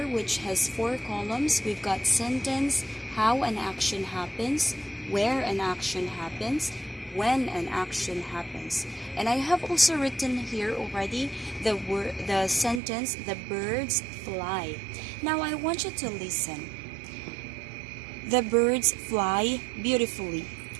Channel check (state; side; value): drops out; left; at 12.8 s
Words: which has 4 columns. We've got sentence, how an action happens, where an action happens, when an action happens. And I have also written here already the sentence, the birds fly. Now I want you to listen. The birds fly beautifully.